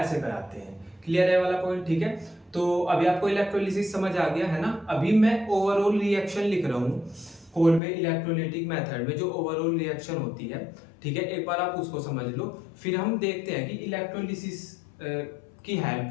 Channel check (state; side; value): drops out; right; at 7.8 s